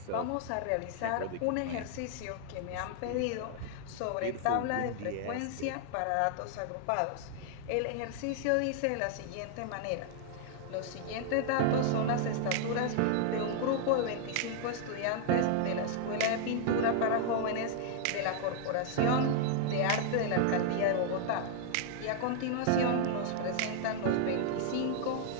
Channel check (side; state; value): both; different; correlation 0.00